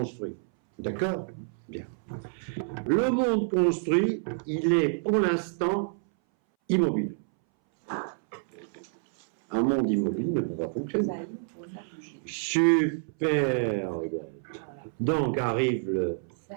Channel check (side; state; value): left; silent; 59 dB below the other